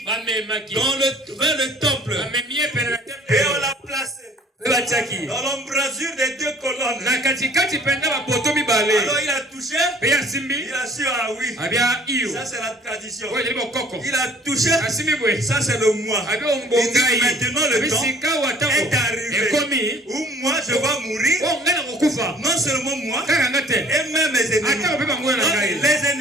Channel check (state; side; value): normal; both; correlation 0.53